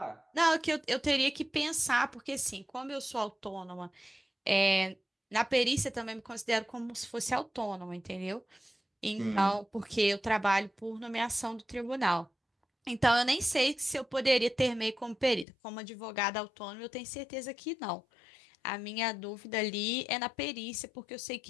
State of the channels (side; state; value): right; drops out; at 15.5 s